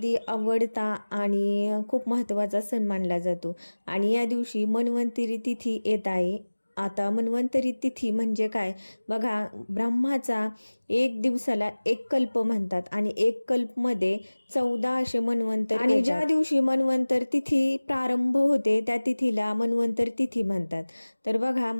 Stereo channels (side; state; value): both; inverted; correlation -1.00